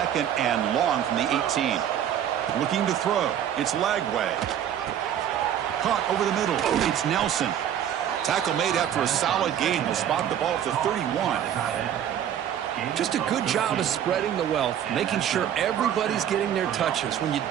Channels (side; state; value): left; quieter; 10.0 dB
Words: and long from the 18. Looking to throw. It's Lagway. Caught over the middle. It's Nelson. Tackle made after a solid gain. Will spot the ball at the 31. Just a good job of spreading the wealth, making sure everybody's getting their touches. When you